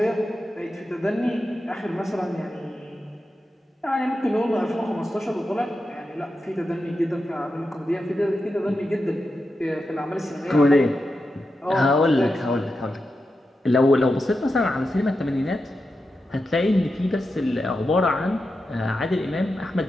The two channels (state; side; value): normal; both; correlation 0.89